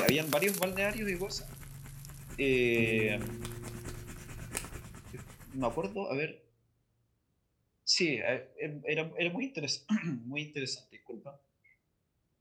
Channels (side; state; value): both; identical; correlation 1.00